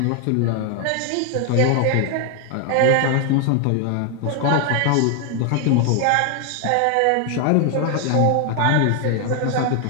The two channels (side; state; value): both; different; correlation 0.00